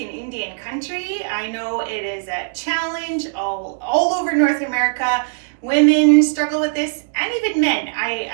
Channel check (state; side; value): silent; left; digital silence